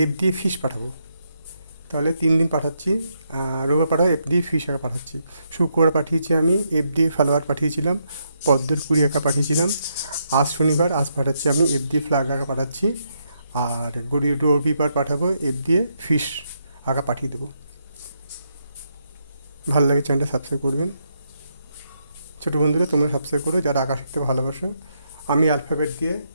এফ দিয়ে ফিশ পাঠাবো। তাহলে 3 দিন পাঠাচ্ছি। রবিবার পাঠাবো এফ দিয়ে ফিশ আঁকা পাঠাচ্ছি। শুক্রবার পাঠিয়েছি আমি এফ দিয়ে ফ্লাওয়ার পাঠিয়েছিলাম, পদ্মের কুড়ি আঁকা পাঠিয়েছিলাম। আজ শনিবার, আজ পাঠাচ্ছি আমি এফ দিয়ে ফ্ল্যাগ আঁকা পাঠাচ্ছি। আর রবিবার পাঠাবো এফ দিয়ে ফিশ আঁকা পাঠিয়ে দেবো। ভালো লাগে চ্যানেলটা সাবস্ক্রাইব করবেন। ছোটো বন্ধুরা তোমরা সাবস্ক্রাইব করো যারা আঁকা শিখতে ভালোবাসো। আমি অ্যালফাবেট দিয়ে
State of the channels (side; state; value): both; inverted; correlation -0.79